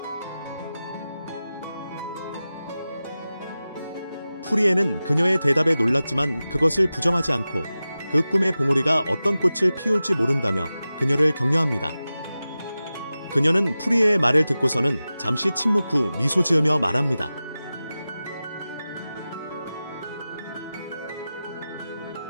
프리에는 그녀의 대답에 놀랐지만 그것을 부정하지 않고 그 꿈의 봉오리가 어떤 꽃을 피울지 모른다며 그녀를 격려합니다. 그녀는 프리에의 말을 듣고서는 잠시 침묵 후 미소 지으며 말합니다.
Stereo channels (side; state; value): both; inverted; correlation -0.95